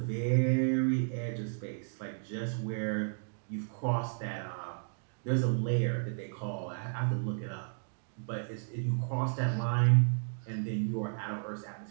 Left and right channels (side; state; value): left; silent; digital silence